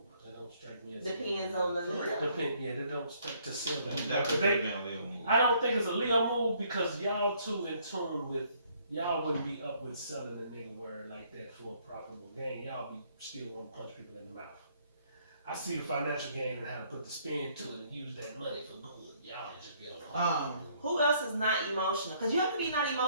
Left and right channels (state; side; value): inverted; both; correlation -0.65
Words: That don't strike me as. Depends on the Leo. Yeah, they don't strike to silver. Definitely been a little move. I don't think it's a Leo move because y'all too in tune with, y'all wouldn't be up with selling a nigga word like that for a profitable gain. Y'all be still want to punch people in the mouth. I see the financial gain and how to put the spin to it and use that money for good. Y'all just be on. Who else is not emotional? Because you have to be not